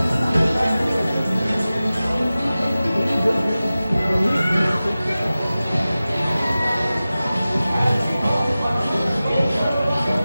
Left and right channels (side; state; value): both; inverted; correlation -0.96